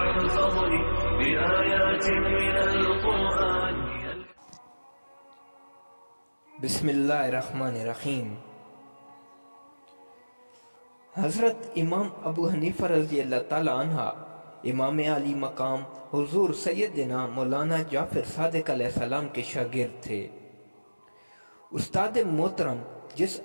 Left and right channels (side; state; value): both; inverted; correlation -1.00